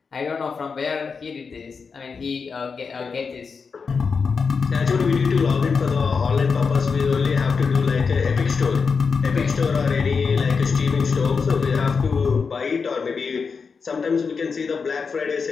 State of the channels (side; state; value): right; quieter; 5.3 dB